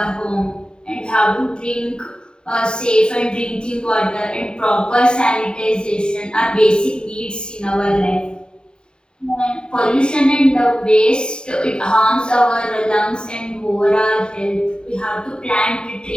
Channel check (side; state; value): right; late; 0.049 ms